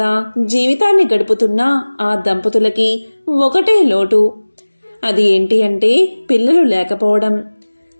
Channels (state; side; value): inverted; both; correlation -1.00